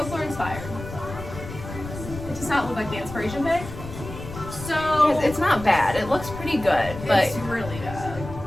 inspired. It does not look like the inspiration pic. So It's not bad. It looks pretty good, but it's really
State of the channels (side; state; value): left; noise; rumble, 11 dB below the sound